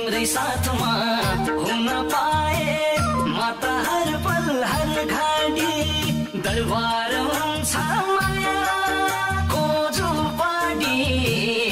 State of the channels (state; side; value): identical; both; correlation 1.00